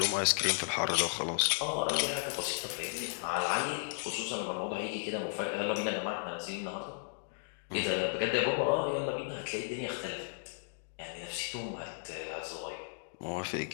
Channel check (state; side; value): silent; right; digital silence